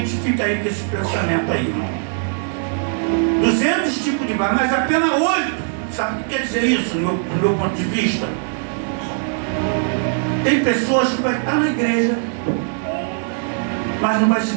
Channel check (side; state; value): left; silent; 58 dB below the other